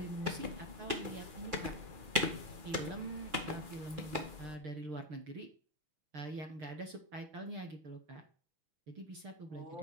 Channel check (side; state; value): left; late; 6.1 ms